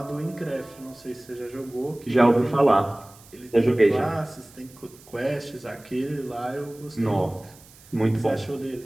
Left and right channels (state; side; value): noise; right; hiss, 24 dB below the sound